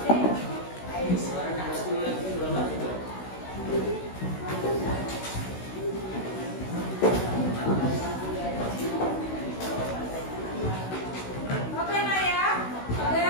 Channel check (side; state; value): right; late; 16 ms